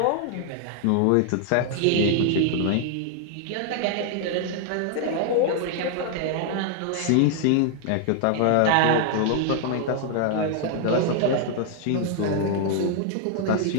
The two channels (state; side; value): different; both; correlation 0.00